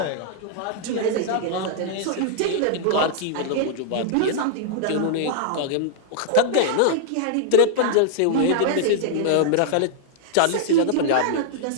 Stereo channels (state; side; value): different; both; correlation -0.01